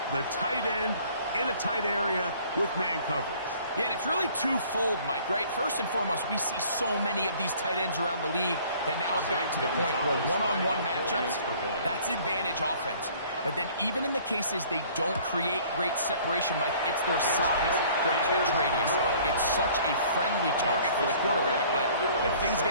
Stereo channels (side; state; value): both; inverted; correlation -0.54